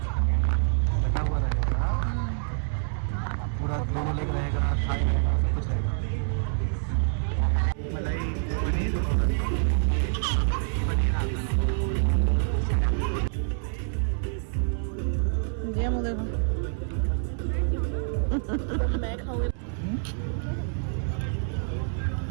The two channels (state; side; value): silent; left; 60 dB below the other